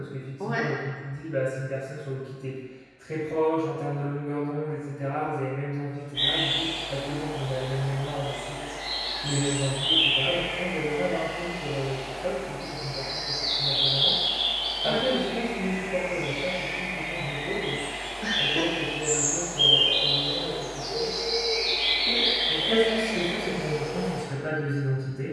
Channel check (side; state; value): both; identical; correlation 1.00